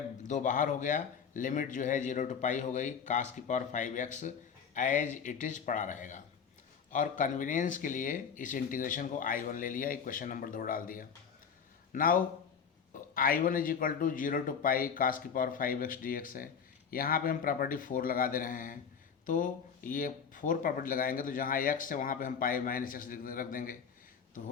दो बाहर हो गया, लिमिट जो है 0 to पाई हो गई, कास की power 5x as it is पड़ा रहेगा। और कन्वीनियंस के लिए इस इंटीग्रेशन को I1 ले लिया, इक्वेशन नंबर 2 डाल दिया। Now I1 is equal to 0 to pi cos की पावर 5x dx है। यहाँ पे हम प्रॉपर्टी 4 लगा दे रहे हैं, तो ये 4 प्रॉपर्टी लगाएंगे तो जहाँ x है वहाँ पे हम पाई माइनस एक्स रख देंगे, तो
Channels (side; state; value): right; quieter; 6.8 dB